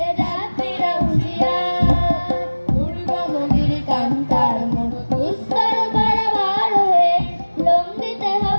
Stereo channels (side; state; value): both; inverted; correlation -1.00